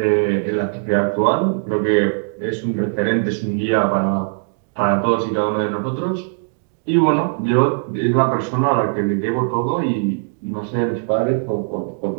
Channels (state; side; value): silent; left; digital silence